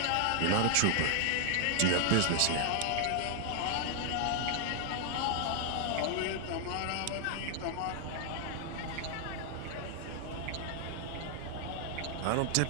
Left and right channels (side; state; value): both; different; correlation 0.00